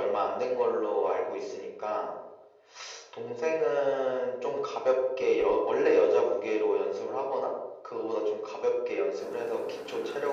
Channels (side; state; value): both; identical; correlation 1.00